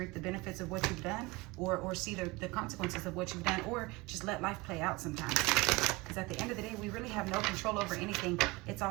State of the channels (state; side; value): quieter; left; 23.0 dB